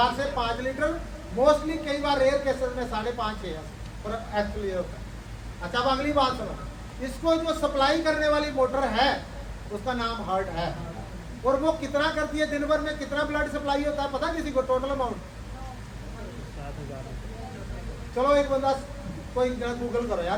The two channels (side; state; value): both; identical; correlation 1.00